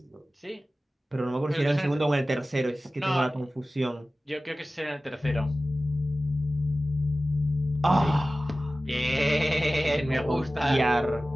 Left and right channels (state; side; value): normal; both; correlation 0.96